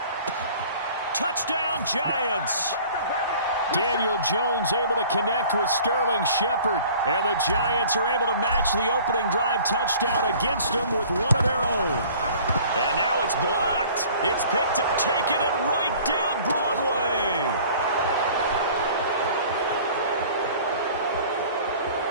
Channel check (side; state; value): both; inverted; correlation -0.49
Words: Touchdown, Giants. Daniel Jones able to connect with Sterling Shepard. And the Giants are able to match the opening drive touchdown against them with one of their own. And now it's blocked. It's picked up, taking it right down Broadway.